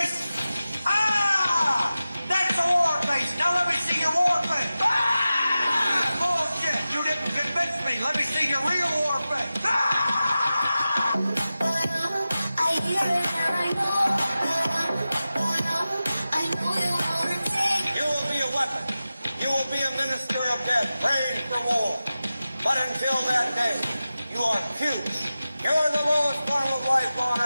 Ah! That's a war face! Now let me see your war face! Ah! Bullshit! You didn't convince me! Let me see your real war face! Ah! Praying for war. But until that day, you are cubes. You are the lowest form of life on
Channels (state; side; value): inverted; both; correlation -0.94